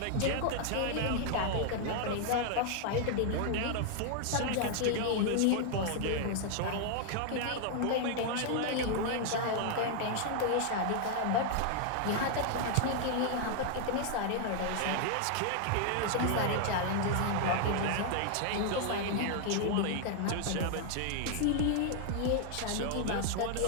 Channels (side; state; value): both; different; correlation 0.00